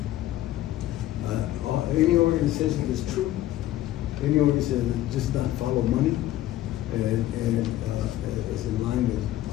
Any organization that's true. Any organization that just not follow money and is in line with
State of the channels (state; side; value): quieter; right; 14.3 dB